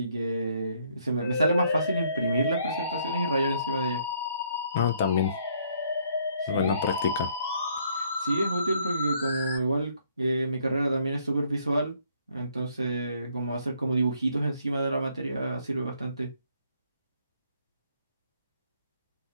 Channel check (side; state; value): both; inverted; correlation -0.66